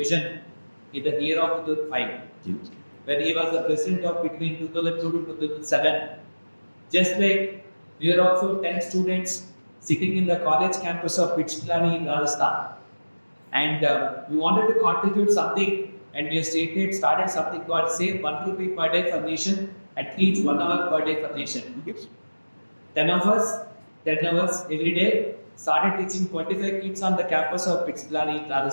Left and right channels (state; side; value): inverted; both; correlation -1.00